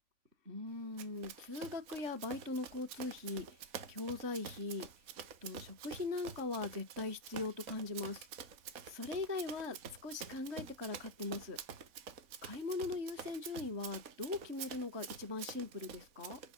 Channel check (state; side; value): late; left; 3.5 ms